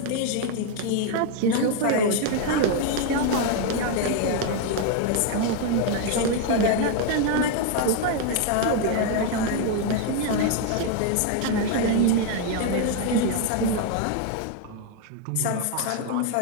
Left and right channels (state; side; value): different; both; correlation 0.01